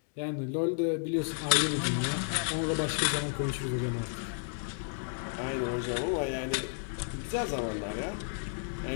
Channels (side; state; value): right; silent; digital silence